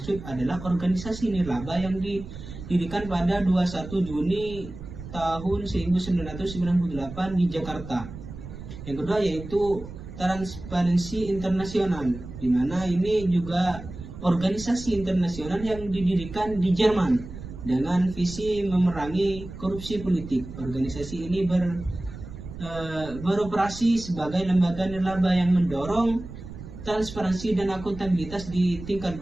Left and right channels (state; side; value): noise; right; rumble, 12 dB below the sound